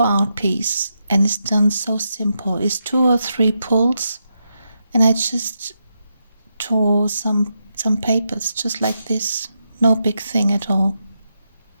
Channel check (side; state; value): both; inverted; correlation -0.84